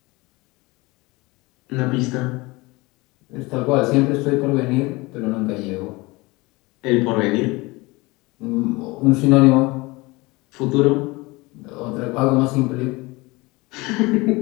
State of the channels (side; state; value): right; quieter; 23.2 dB